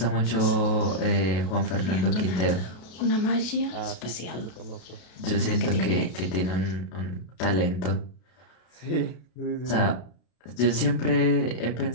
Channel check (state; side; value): late; right; 33 ms